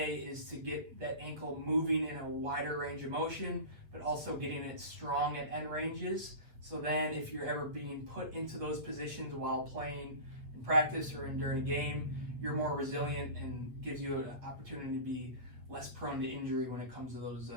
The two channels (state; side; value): late; left; 8.1 ms